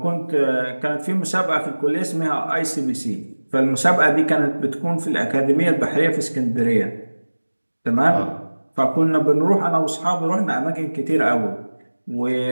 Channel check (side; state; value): both; inverted; correlation -1.00